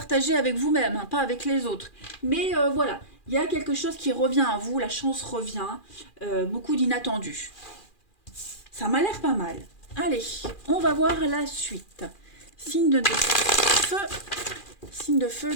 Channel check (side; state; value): right; late; 2.4 ms